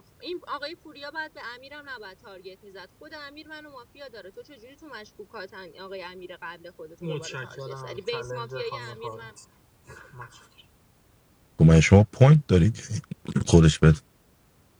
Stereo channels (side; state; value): both; identical; correlation 1.00